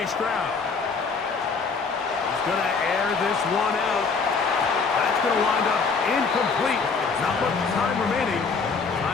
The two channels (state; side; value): quieter; right; 4.9 dB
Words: Stroud. He's going to air this one out. That's going to wind up incomplete. Not much time remaining.